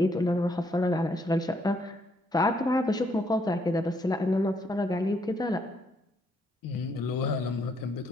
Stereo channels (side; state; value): both; normal; correlation 0.72